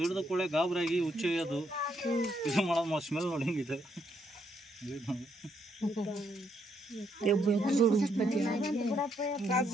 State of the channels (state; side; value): normal; both; correlation 0.75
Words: ಕೂಡಲೇ ಗಾಬರಾಗಿ ಹುಚ್ಚೊಯ್ಯೋದು ಇದು ಮಾಡೋದು ಸ್ಮೆಲ್ ನೋಡಿ ಹೆಂಗಿದೆ